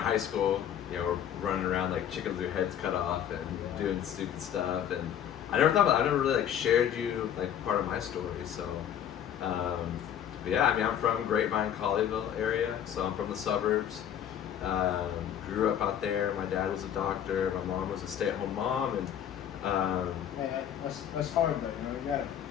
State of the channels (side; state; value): right; quieter; 9.6 dB